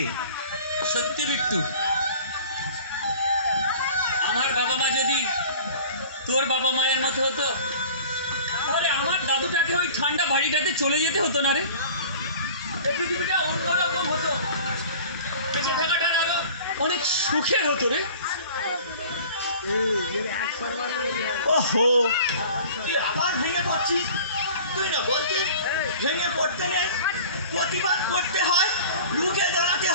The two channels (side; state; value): both; inverted; correlation -0.43